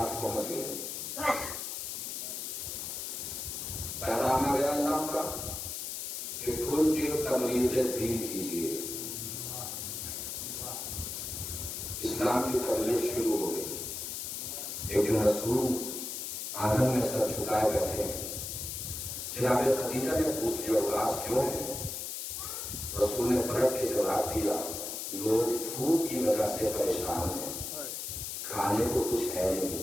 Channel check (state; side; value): noise; left; hiss, 5 dB below the sound